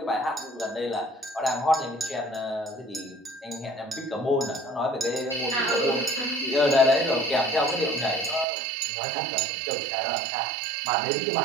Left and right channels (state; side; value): drops out; left; at 8.5 s